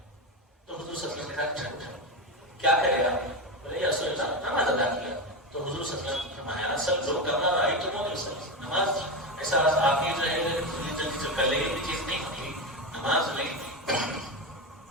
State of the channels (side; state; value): both; normal; correlation 0.16